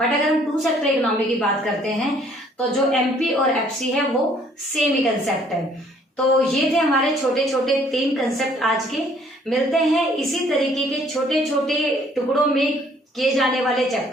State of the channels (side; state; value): both; normal; correlation 0.61